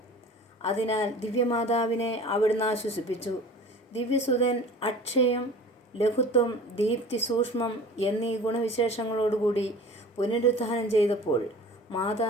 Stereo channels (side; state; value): both; normal; correlation 0.42